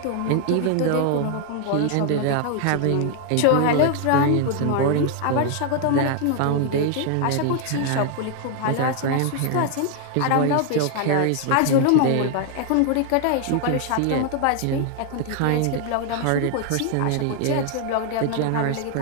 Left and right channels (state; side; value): different; both; correlation 0.00